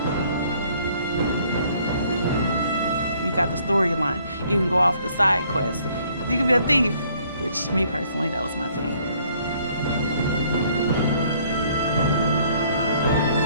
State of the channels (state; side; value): inverted; both; correlation -0.62